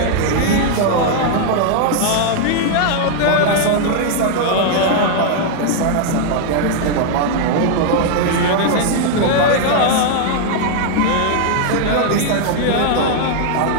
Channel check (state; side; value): different; both; correlation 0.00